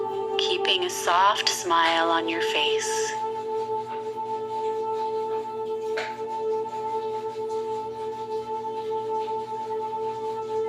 keeping a soft smile on your face.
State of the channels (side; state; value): both; identical; correlation 1.00